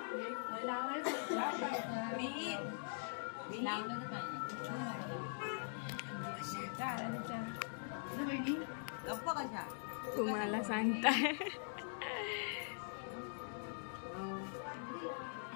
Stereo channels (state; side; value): silent; right; digital silence